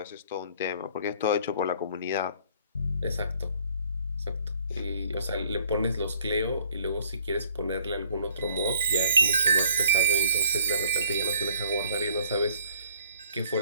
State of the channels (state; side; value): inverted; both; correlation -0.60